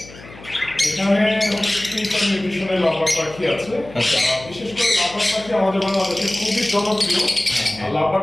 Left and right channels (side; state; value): left; noise; hum, 19 dB below the sound